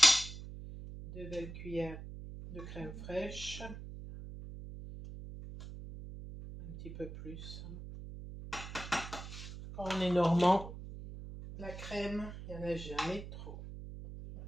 2 belles cuillères de crème fraîche. Un petit peu plus. Quand on est normand, la crème, il n'y en a jamais trop.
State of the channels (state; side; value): noise; right; hum, 11 dB below the sound